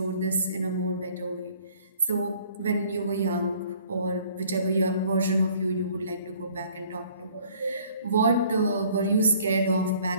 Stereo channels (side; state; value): both; inverted; correlation -0.56